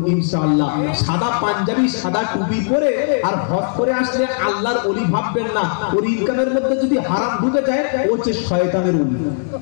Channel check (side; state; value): right; silent; digital silence